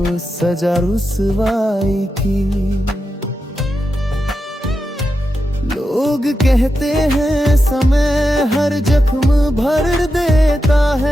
सजा रुसवाई की। लोग कहते हैं समय हर जख्म भर देता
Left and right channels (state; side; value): normal; both; correlation 0.89